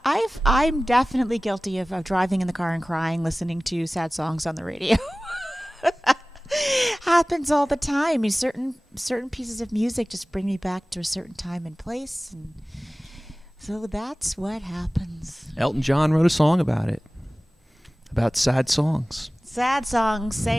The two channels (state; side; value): normal; both; correlation 0.98